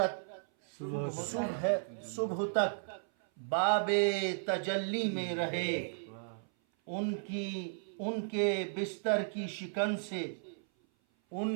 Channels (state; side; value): silent; left; 55 dB below the other